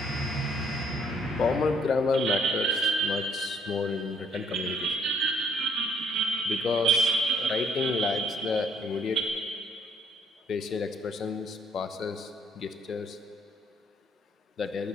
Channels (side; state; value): both; normal; correlation 0.64